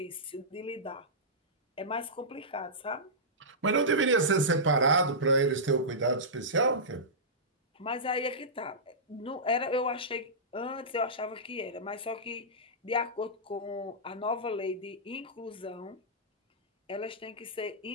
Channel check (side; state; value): both; normal; correlation -0.15